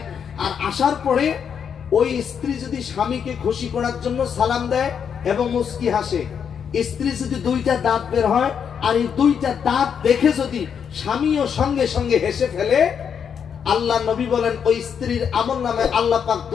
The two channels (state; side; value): quieter; right; 7.4 dB